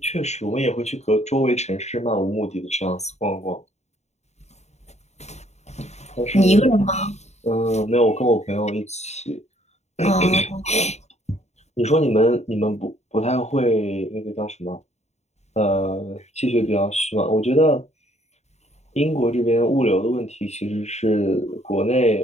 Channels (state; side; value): late; right; 0.32 ms